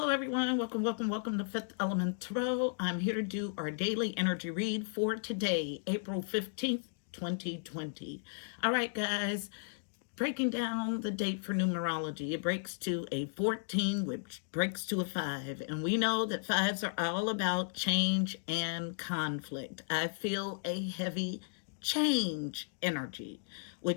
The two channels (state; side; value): silent; right; digital silence